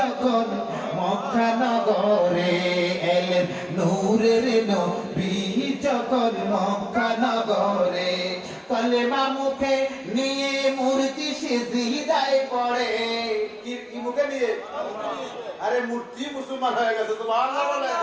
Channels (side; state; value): both; identical; correlation 1.00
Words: মক্কা নগরে, এলেন নূরের নবী যখন মক্কা নগরে, কলেমা মুখে নিয়ে মূর্তি সিজদায় পড়ে। কি মুখে নিয়ে? আরে মূর্তি মুসলমান হয়ে গেছে, সুবহানাল্লাহ বলে।